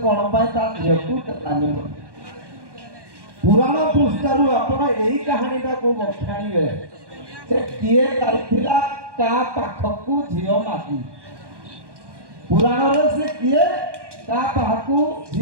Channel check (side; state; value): left; late; 1.1 ms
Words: କ'ଣ ପାଇଁ ତା ଝିଅକୁ ଦେଲାନି ବୋଲି। ପୁରାଣ ପୃଷ୍ଠାରୁ ଆପଣ ଏଇ କାହାଣୀଟାକୁ ବଖାଣିବେ। ସେ କିଏ ଯାଇଥିଲା କା ପାଖକୁ ଝିଅ ମାଗି, ପୁରାଣରେ ସେ କିଏ କା ପାଖକୁ